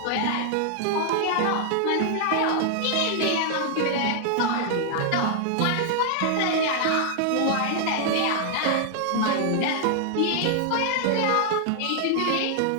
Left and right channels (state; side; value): different; both; correlation 0.00